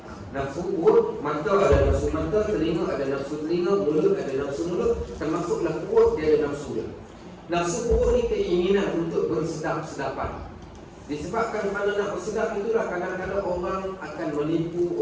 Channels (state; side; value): identical; both; correlation 1.00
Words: Nafsu perut, mata ada nafsu mata, telinga ada nafsu telinga, mulut ada nafsu mulut, termasuklah perut dia ada nafsu dia. Nafsu perut ni keinginan untuk bersedap-sedapan. Disebabkan pada nak bersedap itulah kadang-kadang orang akan menipu,